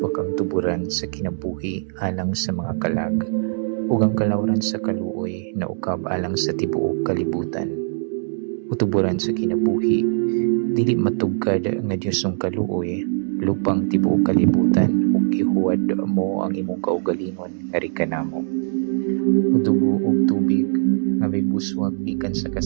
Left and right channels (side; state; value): left; silent; digital silence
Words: ang tuburan sa kinabuhi alang sa mga kalag, ug ang kalawran sa kaluoy na ukab alang sa tibuok kalibutan. Utuburan sa kinabuhi, dili matugkad nga Diyosong kaluoy, lupang tibuok kalibutan, ug ihuwad mo ang imong kaugalingon nga rikanamo. Udugo ug tubig nga may buswag gikan sa